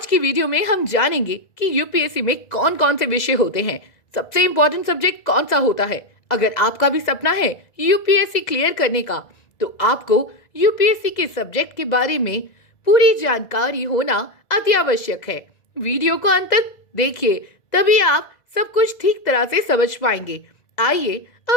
की वीडियो में हम जानेंगे कि यूपीएससी में कौन कौन से विषय होते हैं, सबसे इम्पोर्टेंट सब्जेक्ट कौन सा होता है। अगर आपका भी सपना है यूपीएससी क्लियर करने का, तो आपको यूपीएससी के सब्जेक्ट के बारे में पूरी जानकारी होना अति आवश्यक है। वीडियो को अंत तक देखिए, तभी आप सब कुछ ठीक तरह से समझ पाएंगे। आइए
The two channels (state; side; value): late; right; 2.0 ms